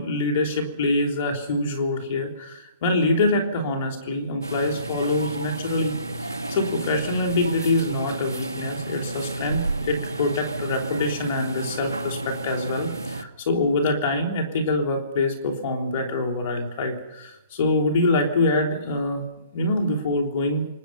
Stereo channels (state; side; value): inverted; both; correlation -0.55